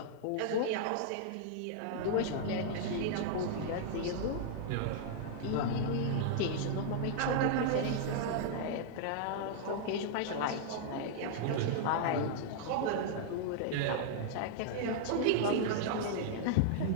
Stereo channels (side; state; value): both; different; correlation -0.01